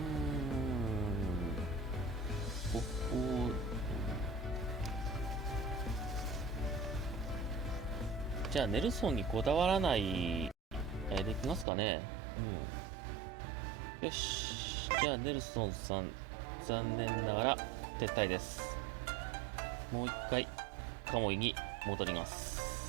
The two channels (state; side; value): drops out; left; at 11.7 s